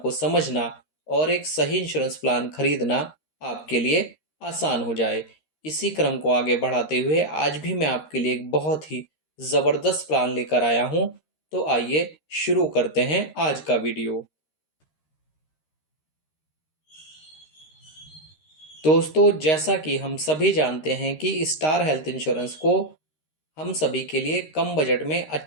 समझना और एक सही इंश्योरेंस प्लान खरीदना आपके लिए आसान हो जाए। इसी क्रम को आगे बढ़ाते हुए आज भी मैं आपके लिए एक बहुत ही ज़बरदस्त प्लान लेकर आया हूं। तो आइए शुरू करते हैं आज का वीडियो। दोस्तों, जैसा कि हम सभी जानते हैं कि स्टार हेल्थ इंश्योरेंस को हम सभी के लिए कम बजट में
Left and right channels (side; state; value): right; late; 13 ms